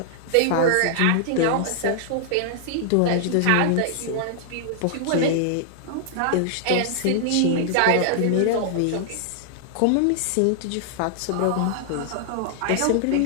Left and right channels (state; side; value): different; both; correlation -0.01